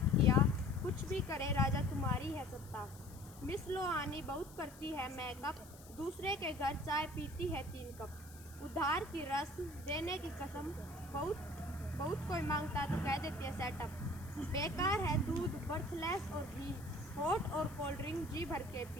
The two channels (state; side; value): noise; left; hiss, 20 dB below the sound